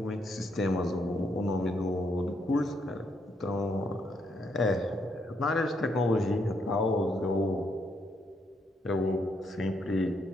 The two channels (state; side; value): normal; both; correlation 0.76